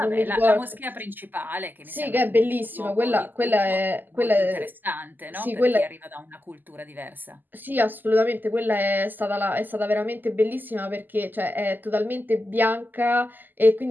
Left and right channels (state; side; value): late; left; 0.088 ms